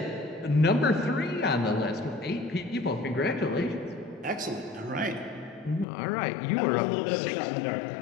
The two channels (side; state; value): right; drops out; at 5.9 s